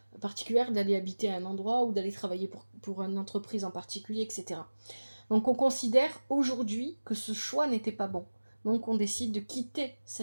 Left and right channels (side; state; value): both; inverted; correlation -1.00